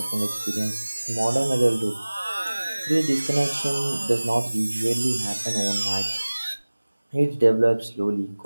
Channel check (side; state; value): both; inverted; correlation -1.00